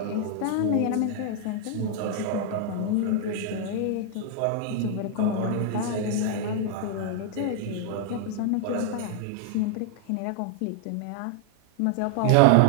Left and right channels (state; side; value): different; both; correlation 0.00